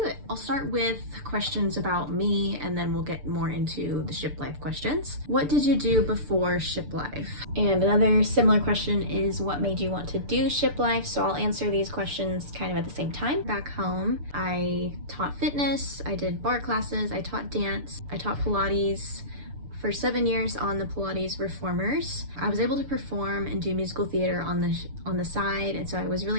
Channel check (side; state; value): left; late; 6.8 ms